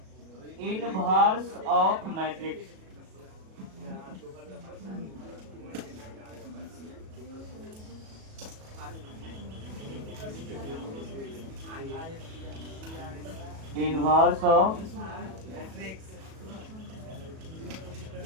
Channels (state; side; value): late; left; 37 ms